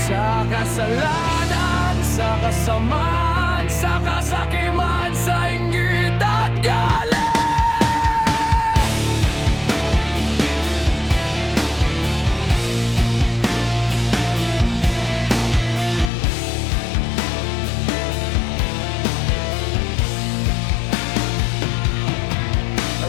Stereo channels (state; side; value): drops out; right; at 16.1 s